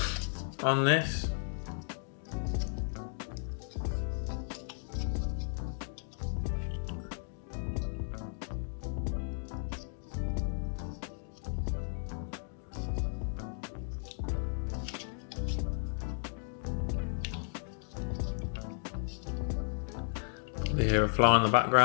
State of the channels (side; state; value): right; silent; 55 dB below the other